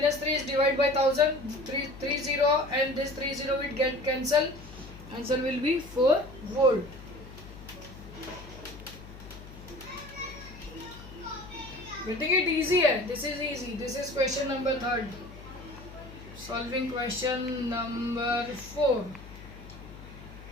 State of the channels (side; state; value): left; noise; hum, 16 dB below the sound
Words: 3 is divided by 1000. 30 and this 30 will get cancelled. Answer will be 4 volt. Getting it easy hai? This is easy. This is question number 3. Solving question number 4.